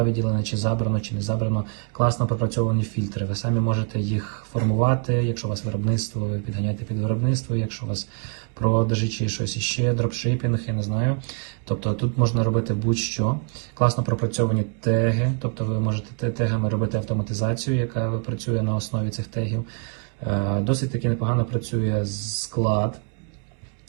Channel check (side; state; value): left; quieter; 37.4 dB